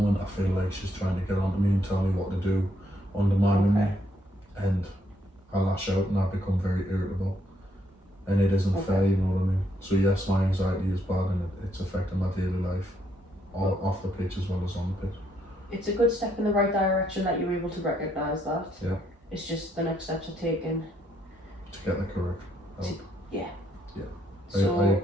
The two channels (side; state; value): both; normal; correlation 0.73